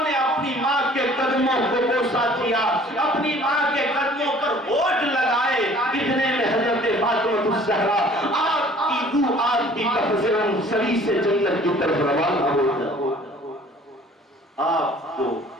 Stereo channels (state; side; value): normal; both; correlation 0.52